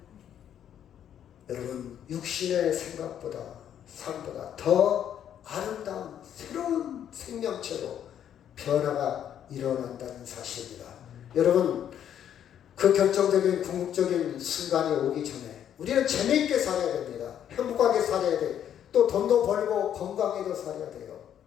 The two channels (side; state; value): right; quieter; 9.8 dB